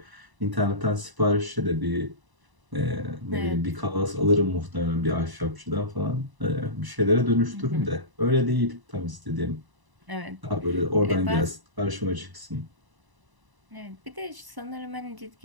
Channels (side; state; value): left; late; 1.0 ms